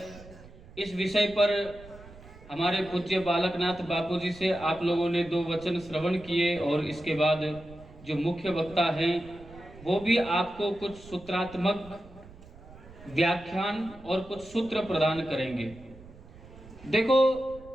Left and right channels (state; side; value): noise; right; rumble, 20 dB below the sound